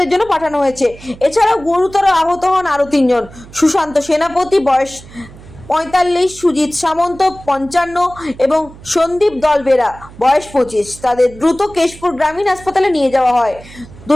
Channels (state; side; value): noise; right; hum, 20 dB below the sound